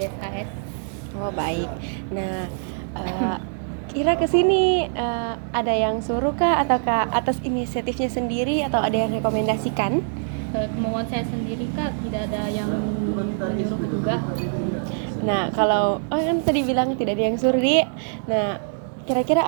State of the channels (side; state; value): left; silent; 61 dB below the other